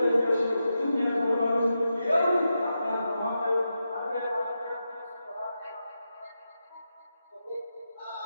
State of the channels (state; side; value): inverted; both; correlation -0.88